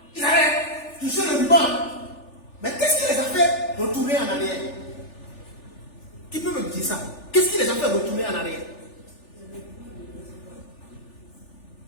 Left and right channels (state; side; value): late; right; 3.4 ms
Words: ils avaient touché le ruban. Mais qu'est-ce qui les a fait retourner en arrière? Qui peut me dire ça? Qu'est-ce qui les a fait retourner en arrière?